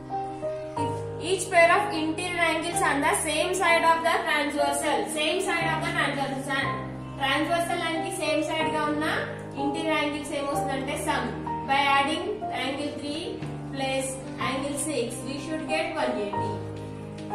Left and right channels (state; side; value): identical; both; correlation 1.00